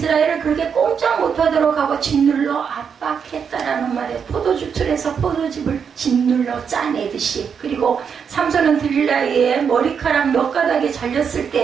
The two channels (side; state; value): left; quieter; 6.8 dB